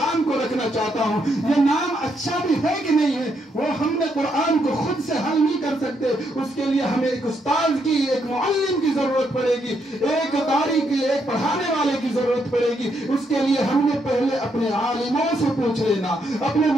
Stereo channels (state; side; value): normal; both; correlation 0.77